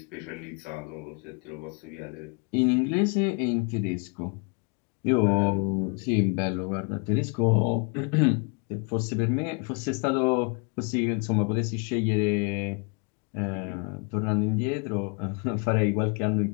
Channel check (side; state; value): right; quieter; 35.0 dB